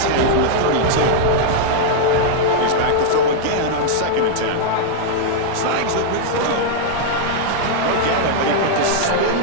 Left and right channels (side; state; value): both; different; correlation -0.01